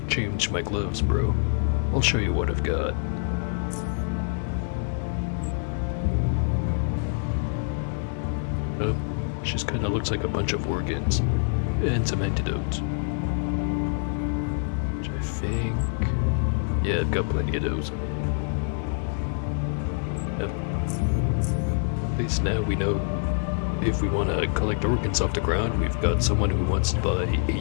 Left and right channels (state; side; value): silent; right; 60 dB below the other